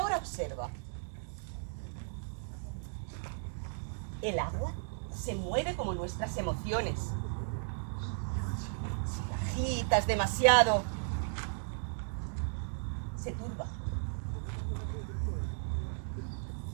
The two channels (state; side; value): silent; left; digital silence